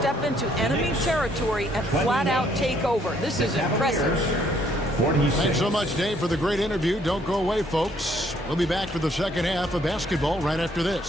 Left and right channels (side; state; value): left; noise; hum, 15 dB below the sound